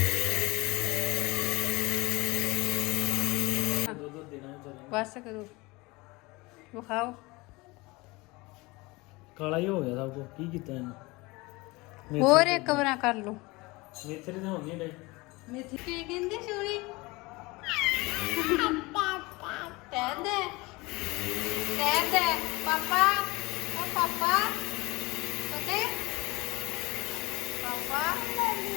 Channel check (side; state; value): right; quieter; 23.4 dB